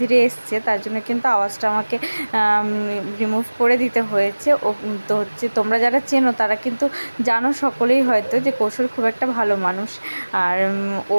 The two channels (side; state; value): both; inverted; correlation -1.00